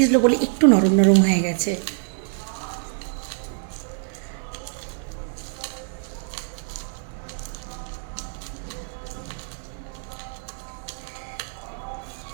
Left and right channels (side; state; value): left; silent; 56 dB below the other